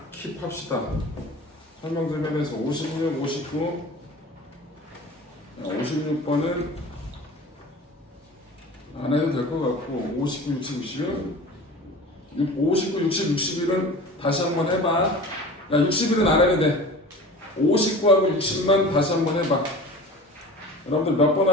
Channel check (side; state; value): both; normal; correlation 0.39